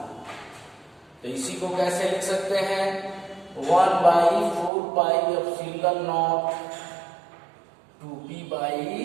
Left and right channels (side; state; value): left; drops out; at 4.7 s